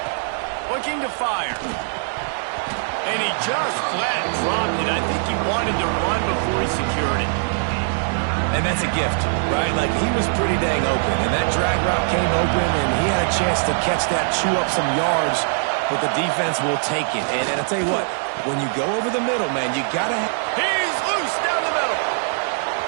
Looking to fire. And he just flat dropped it. I think he wanted to run before he secured it. And that's a gift, right? Like, he was pretty dang open, and that drag route came open, and he had a chance to catch that, chew up some yards, but the defense will take it. And I'll tell you what, when you go over the middle, man, you got to... He's loose down the middle.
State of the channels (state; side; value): silent; left; digital silence